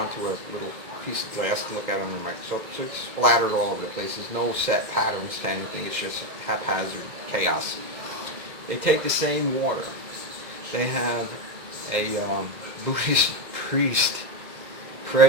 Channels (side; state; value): left; late; 2.0 ms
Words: a little piece of glass to look at under a microscope. So it's splattered all over the place. There's no set patterns to anything. It's just haphazard chaos. They take the same water. They have a Buddhist priest